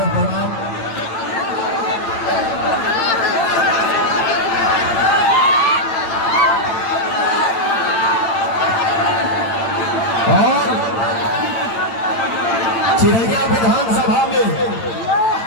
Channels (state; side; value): late; right; 8.9 ms